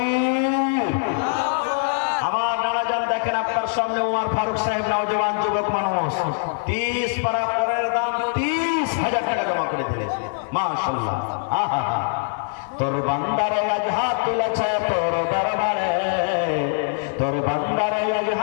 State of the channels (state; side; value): silent; right; 60 dB below the other